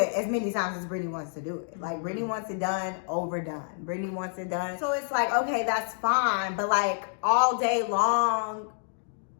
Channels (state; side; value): silent; right; digital silence